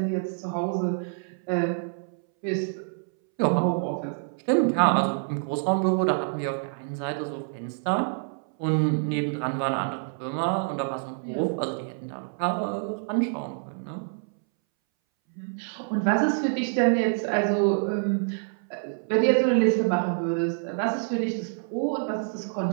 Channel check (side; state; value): left; silent; 60 dB below the other